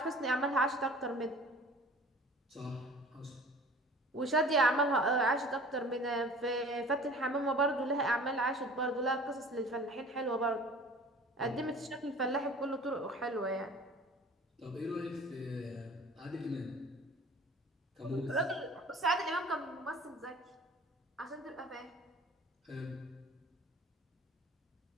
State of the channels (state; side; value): normal; both; correlation 0.46